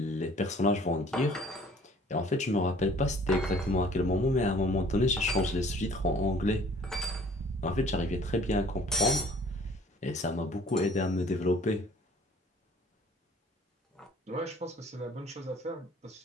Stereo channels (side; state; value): both; normal; correlation 0.53